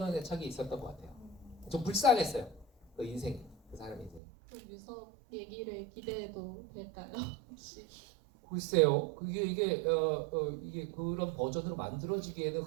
애착이 있었던 것 같아요. 좀 불쌍했어요. 그 인생, 그 사람 인생. 그럼 유석 얘기를 기대해도 될까요? 혹시? 글쎄요. 이게 그런 버전으로 만들어지기에는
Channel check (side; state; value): left; drops out; at 4.2 s